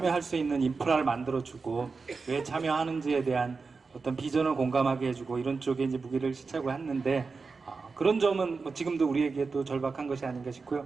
수 있는 인프라를 만들어주고 왜 참여하는지에 대한 어떤 비전을 공감하게 해주고 이런 쪽에 이제 무기를 시착을 했는데 그런 점은 뭐 지금도 우리에게 또 절박한 것이 아닌가 싶고요.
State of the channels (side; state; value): left; quieter; 4.5 dB